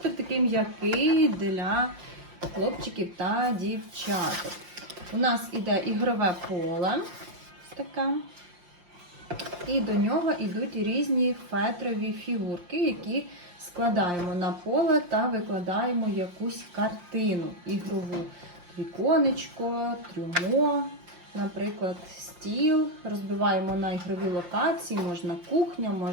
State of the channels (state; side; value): late; left; 5.8 ms